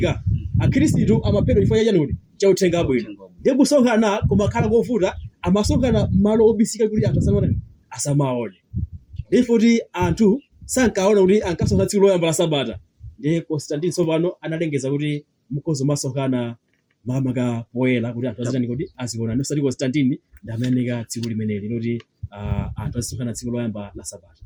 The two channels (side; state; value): both; identical; correlation 1.00